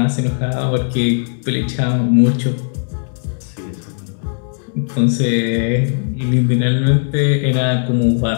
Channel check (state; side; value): silent; right; digital silence